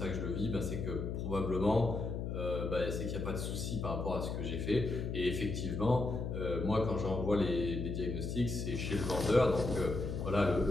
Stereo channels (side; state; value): left; noise; hum, 3 dB below the sound